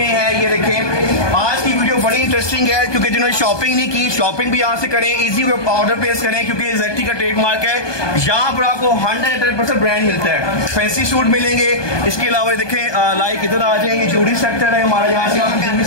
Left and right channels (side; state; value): right; late; 1.2 ms